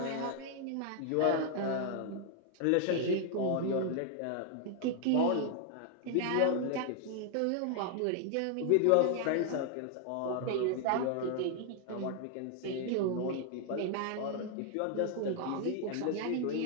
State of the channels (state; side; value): different; both; correlation 0.00